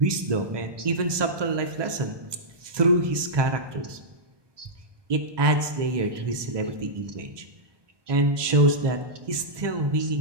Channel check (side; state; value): left; late; 1.2 ms